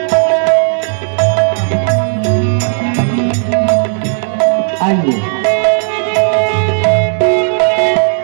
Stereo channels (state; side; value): silent; left; 65 dB below the other